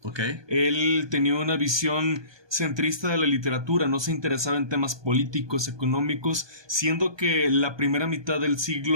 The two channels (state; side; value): late; left; 1.2 ms